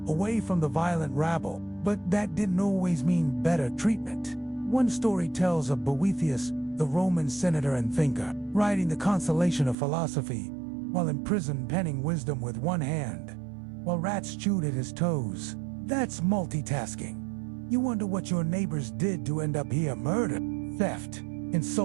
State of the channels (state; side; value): drops out; left; at 9.8 s